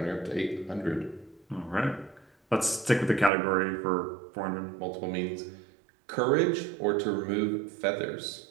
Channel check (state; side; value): drops out; left; at 3.3 s